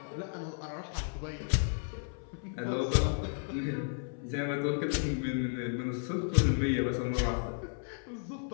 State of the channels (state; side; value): silent; right; 56 dB below the other